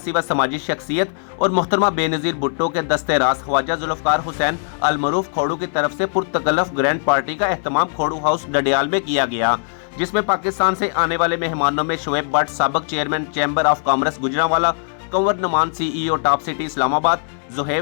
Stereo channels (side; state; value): right; silent; 63 dB below the other